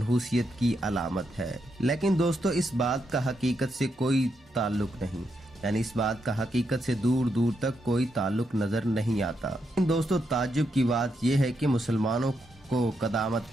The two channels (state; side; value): normal; both; correlation 0.81